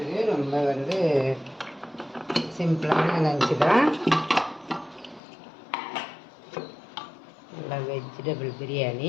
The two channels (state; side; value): drops out; right; at 5.2 s